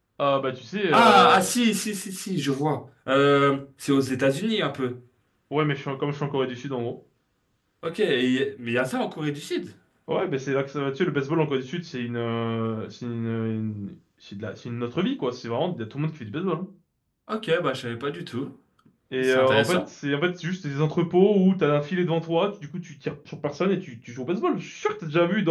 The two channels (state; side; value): identical; both; correlation 1.00